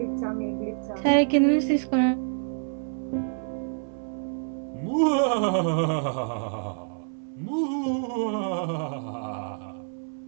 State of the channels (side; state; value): left; silent; 60 dB below the other